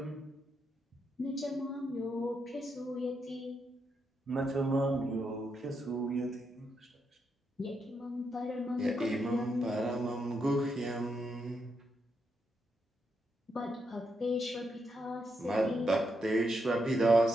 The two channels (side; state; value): both; normal; correlation 0.82